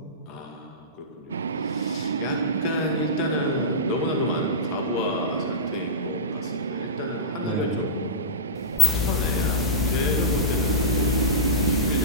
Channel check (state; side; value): normal; both; correlation -0.14